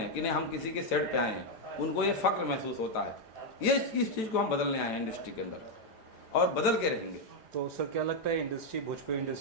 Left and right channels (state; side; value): late; right; 4.9 ms